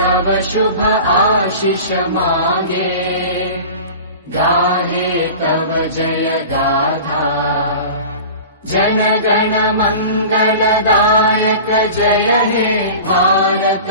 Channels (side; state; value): both; inverted; correlation -0.37